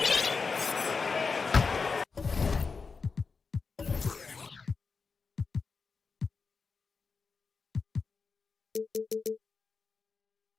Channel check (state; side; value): quieter; right; 4.8 dB